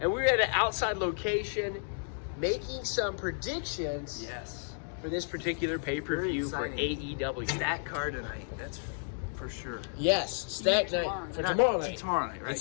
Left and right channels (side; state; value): right; silent; digital silence